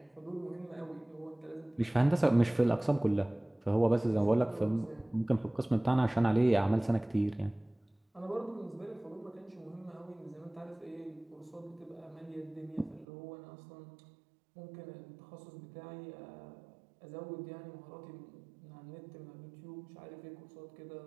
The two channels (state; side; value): drops out; left; at 13.1 s